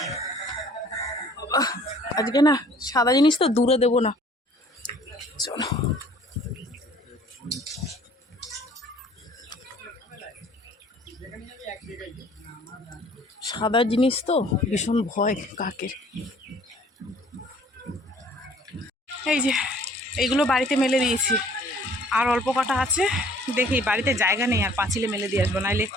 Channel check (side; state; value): both; normal; correlation 0.54